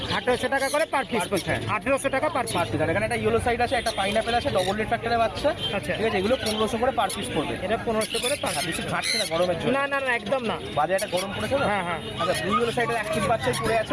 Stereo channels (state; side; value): identical; both; correlation 1.00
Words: 1800 টাকা করে পার পিস। Per piece, হ্যাঁ। 1800 টাকা পার পার পিস। পিস। আর এখানে একটা ইয়েলো সাইড আছে, একটা পাইনাপেল আছে, ডবল রেড ফ্যাক্টরের বাচ্চা। আচ্ছা। ঠিক আছে, এগুলো 1500 করে পার পিস পড়বে। এটা 1500 করে পার আর পিস। বেশি ঘাটছে না গরমের জন্য। না না না, একদম না। বাজারে একটা গরম পড়েছে না। হ্যাঁ হ্যাঁ, আচ্ছা, দুই ইয়েলো সাইডের অ্যাক্টিভ বাচ্চাই পড়ে আছে